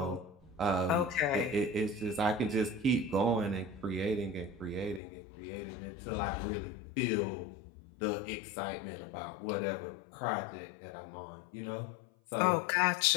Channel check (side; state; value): right; drops out; at 5.0 s